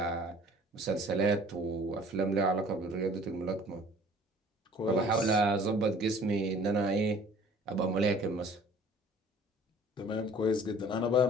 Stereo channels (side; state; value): both; normal; correlation 0.51